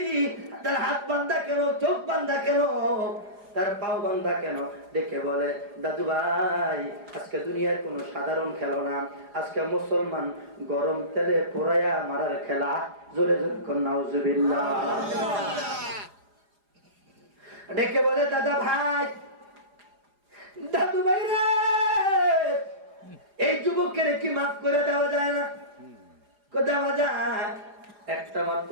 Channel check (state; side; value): late; left; 4.9 ms